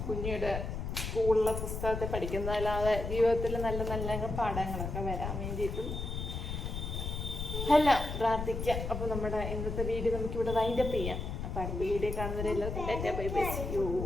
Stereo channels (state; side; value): noise; left; rumble, 4 dB below the sound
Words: കുഞ്ഞിയുടെ സ്കൂളിലെ പുസ്തകത്തെ പഠിക്കുന്നതല്ലാതെ ജീവിതത്തിൽ നല്ല നല്ല പാഠങ്ങളൊക്കെ വരാൻ വേണ്ടിയിട്ടും എല്ലാം പ്രാർത്ഥിക്കുക. അപ്പൊ നമ്മുടെ ഇന്നത്തെ വീഡിയോ നമുക്കിവിടെ വൈൻഡപ്പ് ചെയ്യാം. അപ്പൊ അടുത്ത വീഡിയോ കാണുന്നവരെല്ലാവർക്കും ടാറ്റാ ബൈ ബൈ.